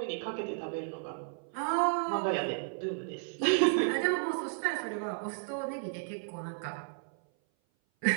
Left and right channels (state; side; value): silent; left; 56 dB below the other